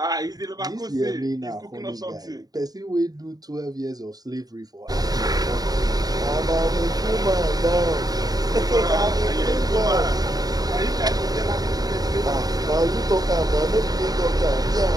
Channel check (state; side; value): late; left; 0.18 ms